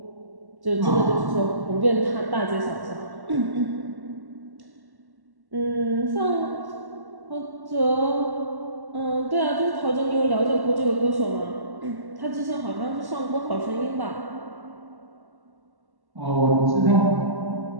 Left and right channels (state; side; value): late; left; 1.1 ms